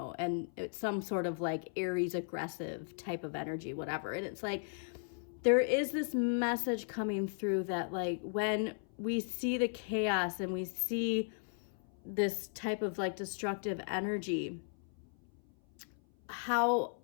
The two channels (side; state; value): right; silent; 54 dB below the other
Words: and it's some sort of like Aries aggressive type of energy, whatever. And it's like, there is this message coming through that like when we see the chaos and we see this type of like destructive energy, how